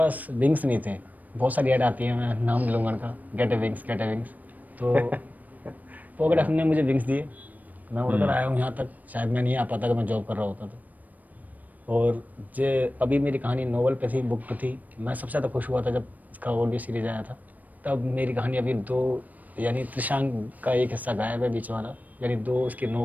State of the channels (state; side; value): late; left; 0.079 ms